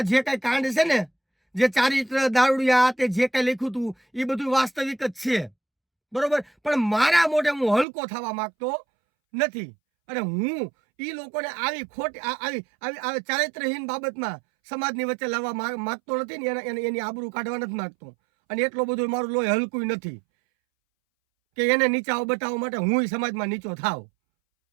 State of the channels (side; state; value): left; drops out; at 7.9 s